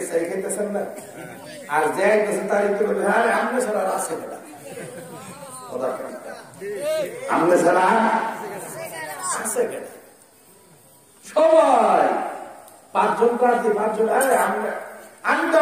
সাইড খাইতেছেন না? আর যে আইতেছে তার একটু বলবে, আরে আমনে ছাড়া আছে না, কথা কেন আমনে ছাড়া আছে কেন? সবাই 5 জন প্রার্থী, 5 জন, আরে আমি তো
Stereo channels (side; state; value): both; identical; correlation 1.00